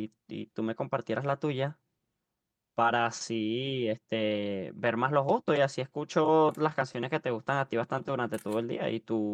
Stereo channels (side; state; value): both; identical; correlation 1.00